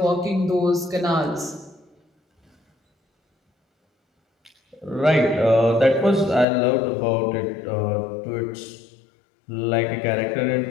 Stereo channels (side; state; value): right; drops out; at 6.5 s